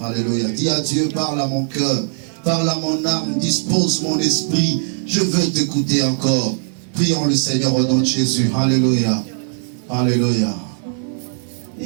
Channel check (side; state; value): left; silent; digital silence